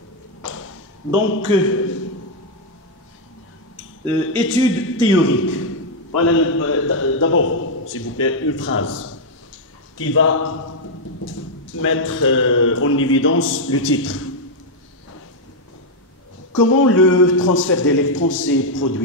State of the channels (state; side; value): normal; both; correlation -0.01